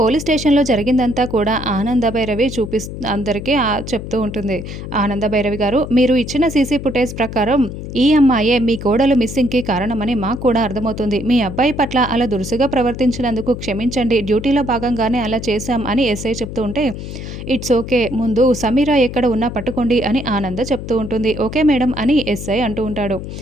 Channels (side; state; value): left; noise; hum, 9 dB below the sound